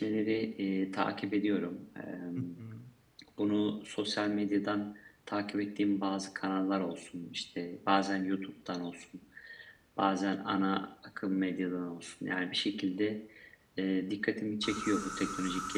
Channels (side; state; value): both; identical; correlation 1.00